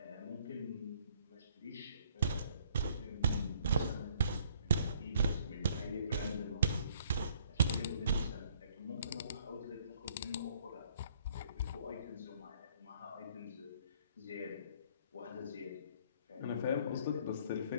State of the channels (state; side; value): inverted; both; correlation -0.62